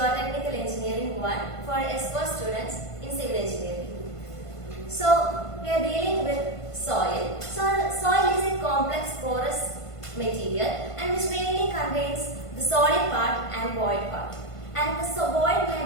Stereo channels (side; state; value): right; late; 1.5 ms